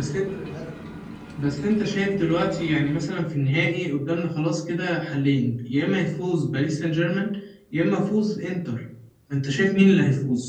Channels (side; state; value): both; identical; correlation 1.00